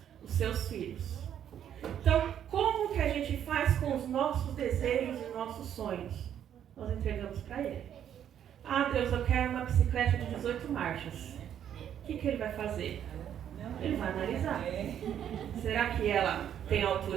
os seus filhos. Então, como que a gente faz com os nossos desejos e nossos sonhos? Nós entregamos para Ele. Ah, Deus, eu quero uma bicicleta de 18 marchas. O que Ele vai fazer? Ele vai analisar. Será que ela tem a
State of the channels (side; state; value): left; quieter; 9.7 dB